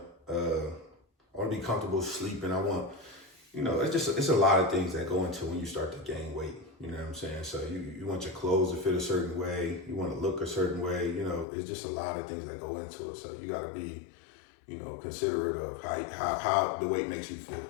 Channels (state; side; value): drops out; right; at 11.5 s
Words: I want to be comfortable sleeping. I want, it's a lot of things that go into when you start to gain weight. You know what I'm saying? So you want your clothes to fit a certain way. You want to look a certain way. It's just a lot of things that go into it. So you got to be, considerate of how the weight makes you feel.